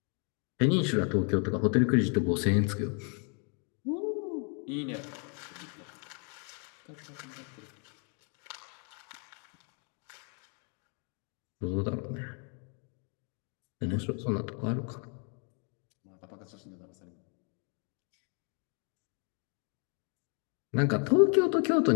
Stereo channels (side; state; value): right; quieter; 39.2 dB